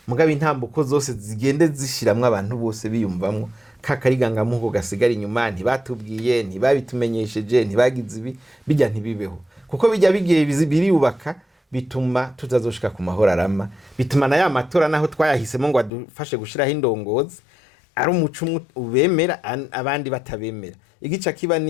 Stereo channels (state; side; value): drops out; right; at 15.9 s